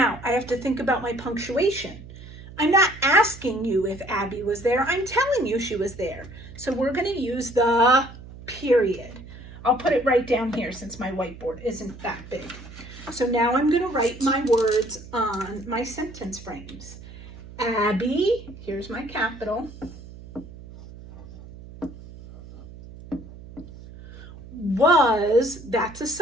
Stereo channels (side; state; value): right; noise; hum, 16 dB below the sound